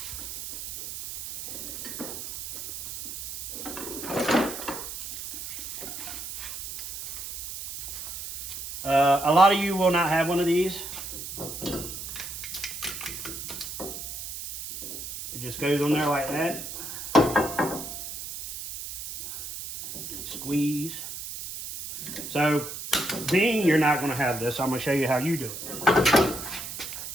A lot of you will not have one of these. It just goes on there like that. Squeeze. So, being you're not going to have this, I'm going to show you how you do it.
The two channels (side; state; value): right; noise; hiss, 8 dB below the sound